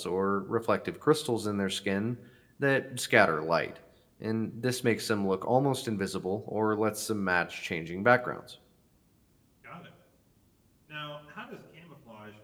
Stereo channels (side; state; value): both; identical; correlation 1.00